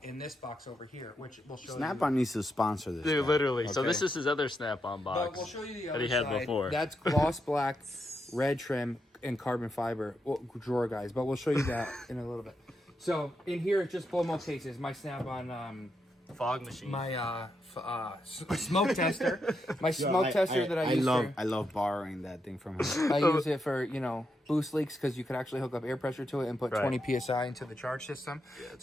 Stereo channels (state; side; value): normal; both; correlation 0.83